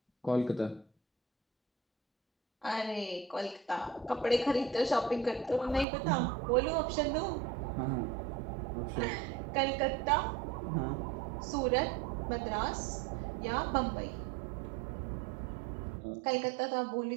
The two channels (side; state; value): left; drops out; at 5.9 s